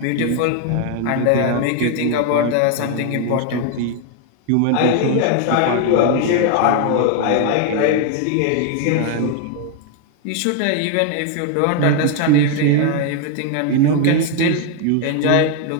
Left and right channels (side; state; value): both; different; correlation 0.01